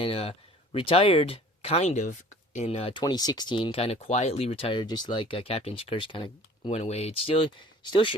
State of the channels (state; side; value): normal; both; correlation 0.49